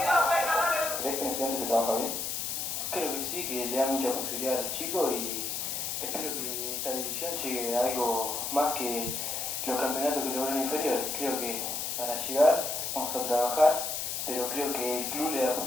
¿Ves que en Estudiantes se trabaja bien? Creo que sí, que le da mucha posibilidad a los chicos y espero que esta división llegue a algo más que los campeonatos que lograron inferiores. Creo que para llegar vamos a trabajar, pero creo que el club le da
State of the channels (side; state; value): left; noise; hiss, 2 dB below the sound